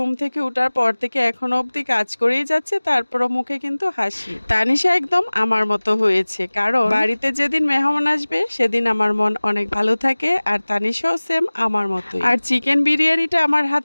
থেকে ওঠার পর থেকে এখনো অবধি কাজ করেই যাচ্ছে, তারপরও মুখে কিন্তু হাসি। তানিশা একদম আমার মতো হয়েছে, কারণ বাড়িতে যেদিন মেহমান আসবে সেদিন আমার মন অনেক ভালো থাকে, আর তানিশাও সেম আমার মতো। আর চিকেন বিরিয়ানিটা আমার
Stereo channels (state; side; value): inverted; both; correlation -1.00